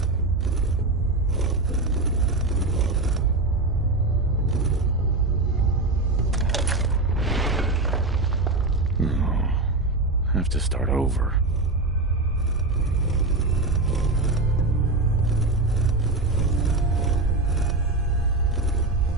No. Have to start over.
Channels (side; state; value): left; quieter; 3.0 dB